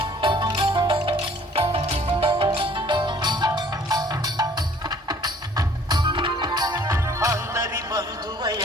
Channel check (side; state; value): both; normal; correlation 0.56